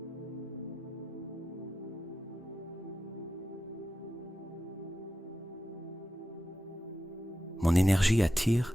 Mon énergie attire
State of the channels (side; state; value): both; normal; correlation 0.90